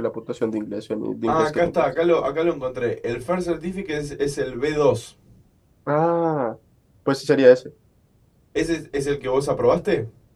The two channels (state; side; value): identical; both; correlation 1.00